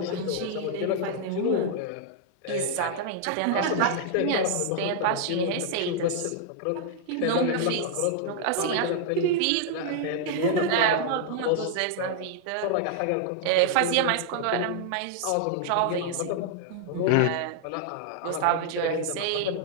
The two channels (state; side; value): different; both; correlation -0.01